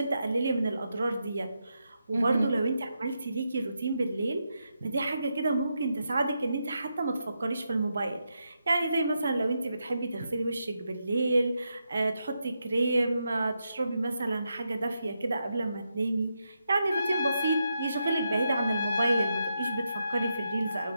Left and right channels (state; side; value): inverted; both; correlation -0.84